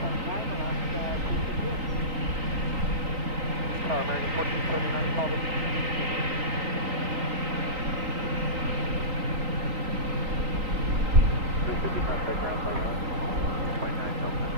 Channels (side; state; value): left; late; 3.9 ms